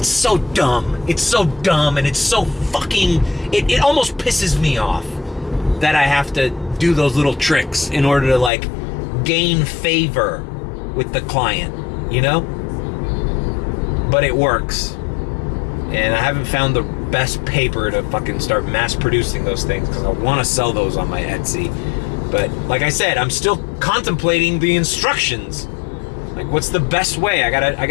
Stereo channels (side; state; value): right; drops out; at 8.5 s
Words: so dumb. It's so dumb, and it's so fucking... It almost pisses me off that I have to do those little tricks in order to, like, gain favor with the client, you know? But it works. And I haven't found the best paper to fucking start mass producing those things, because I want to sell those on my Etsy. But like I said, I'm still contemplating the instructions. Like, what's the best way? I